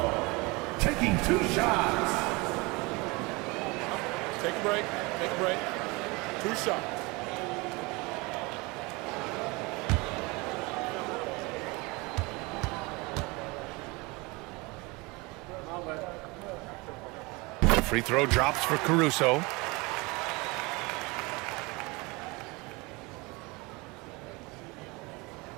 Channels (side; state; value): left; quieter; 25.5 dB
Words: Taking 2 shots. Take a break. Take a break. 2 shots. Free throw drops for Caruso.